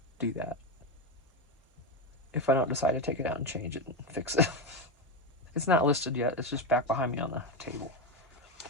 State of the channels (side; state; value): both; normal; correlation 0.12